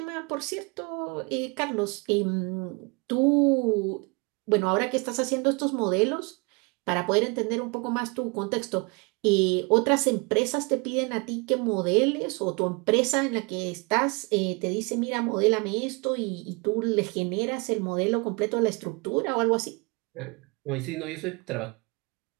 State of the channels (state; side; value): quieter; left; 29.9 dB